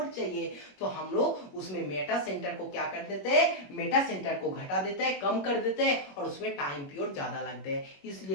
चाहिए, तो हम लोग उसमें मेटा सेंटर को क्या कर देते हैं, मेटा सेंटर को घटा देते हैं, कम कर देते हैं, और उसमें टाइम पीरियड ज्यादा लगते हैं।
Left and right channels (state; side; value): late; right; 21 ms